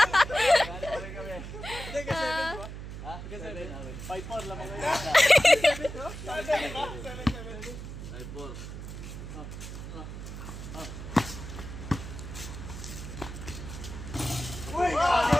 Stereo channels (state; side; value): noise; right; hum, 9 dB below the sound